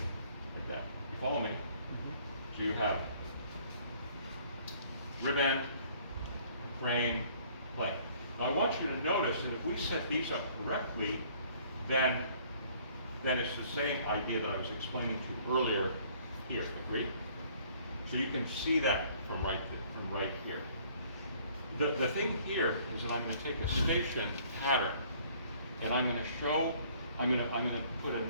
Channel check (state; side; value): inverted; both; correlation -0.58